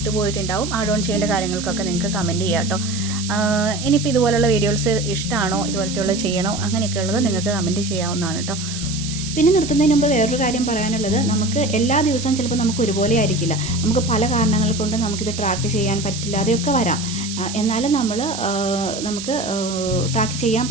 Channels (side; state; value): right; noise; hiss, 9 dB below the sound